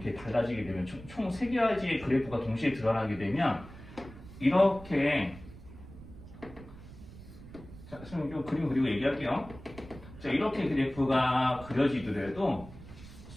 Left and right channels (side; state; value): right; noise; rumble, 17 dB below the sound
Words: 달라지게 되면 총 3가지의 그래프가 동시에 드러나게 되면 이렇게, 자, 선생님 좀 그림 그리고 얘기할게요. 자, 이렇게 그래프가 그려지더라도